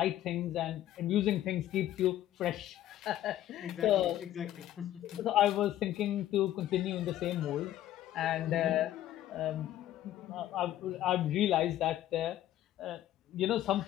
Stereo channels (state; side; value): quieter; right; 12.9 dB